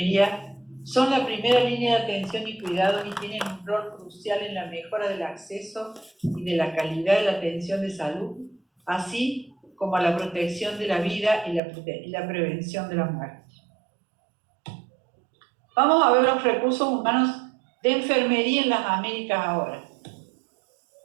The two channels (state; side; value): drops out; left; at 11.6 s